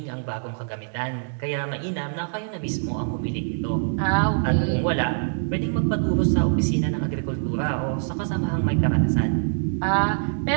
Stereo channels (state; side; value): silent; left; digital silence